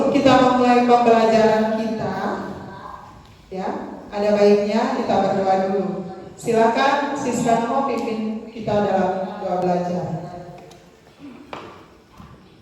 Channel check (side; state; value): both; identical; correlation 1.00